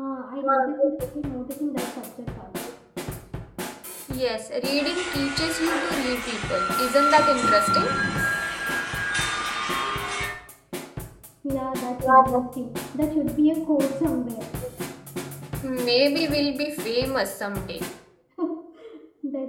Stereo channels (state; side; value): identical; both; correlation 1.00